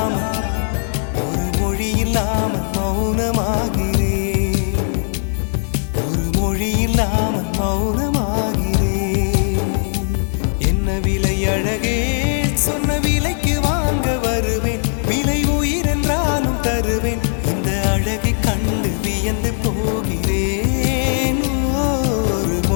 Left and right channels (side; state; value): right; silent; 62 dB below the other